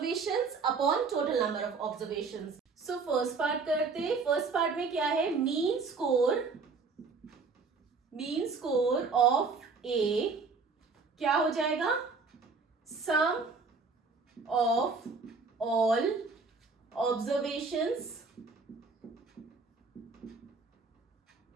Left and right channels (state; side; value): quieter; left; 4.5 dB